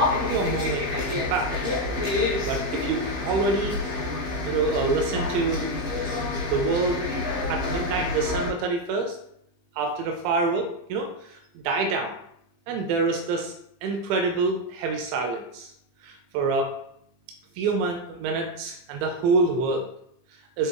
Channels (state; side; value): late; left; 15 ms